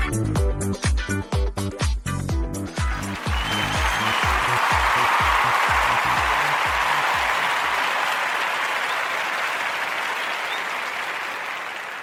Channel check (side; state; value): both; identical; correlation 1.00